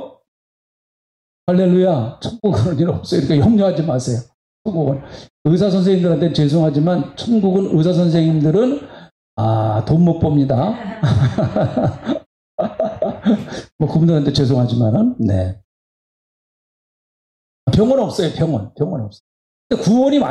할렐루야. 천국은 그런 일 없어요. 그러니까 염려하지 마세요. 천국은. 의사 선생님들한테 죄송하지만 천국은 의사 선생님들은 돈 못 봅니다. 뭐 그분들한테 죄송하지만은 네. 병은 없어요. 병은 없어요. 구원이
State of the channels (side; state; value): both; identical; correlation 1.00